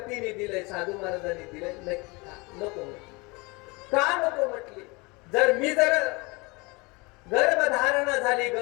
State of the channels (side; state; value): right; quieter; 26.4 dB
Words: दिलंय, साधू महाराजांनी दिलंय, नको का नको म्हटली. जर गर्भधारणा झाली,